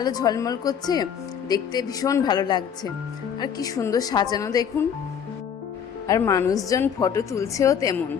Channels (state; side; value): quieter; right; 7.8 dB